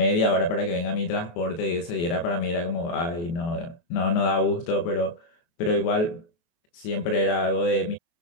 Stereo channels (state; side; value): late; right; 23 ms